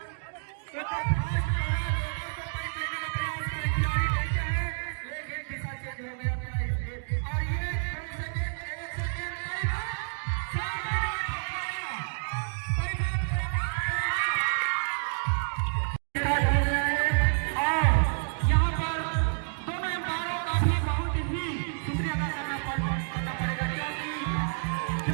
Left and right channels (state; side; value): silent; left; digital silence